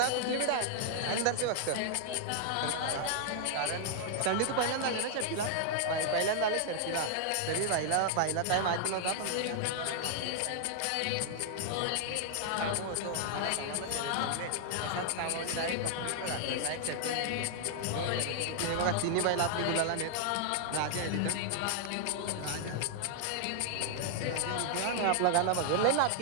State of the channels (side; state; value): both; different; correlation 0.00